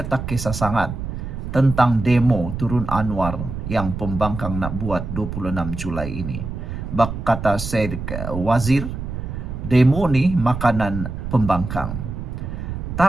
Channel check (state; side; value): noise; right; rumble, 6 dB below the sound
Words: tak kisah sangat tentang demo turun Anwar yang pembangkang nak buat 26 Julai ini. Kata Syed Wazir, demo ni makanan pembangkang.